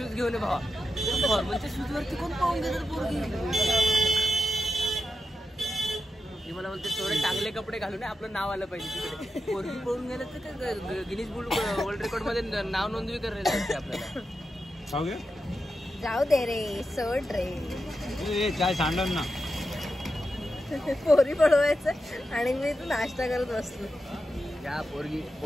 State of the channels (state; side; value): normal; both; correlation 0.89